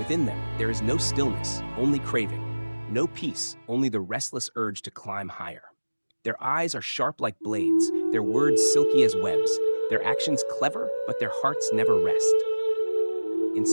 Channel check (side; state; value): both; inverted; correlation -1.00